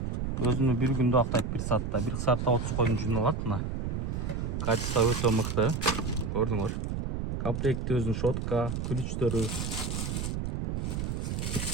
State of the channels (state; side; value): noise; right; rumble, 2 dB below the sound